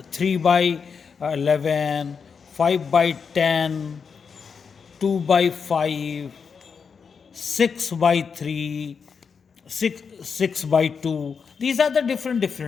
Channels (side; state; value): right; quieter; 6.0 dB